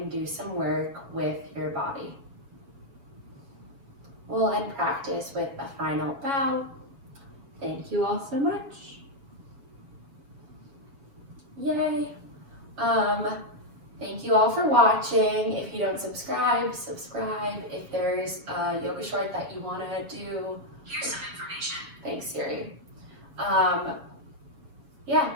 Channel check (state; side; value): late; left; 7.2 ms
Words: do some work with your body. We'll end practice with a final bow. Thank you all so much. Yay. Thank you all for watching. If you don't subscribe, subscribe. If there's a yoga short that you want to do, here's some information. Thanks, Siri. Yeah,